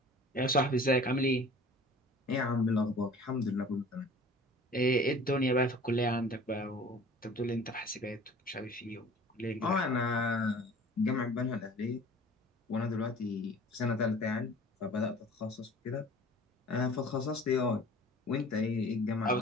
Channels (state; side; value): normal; both; correlation 0.46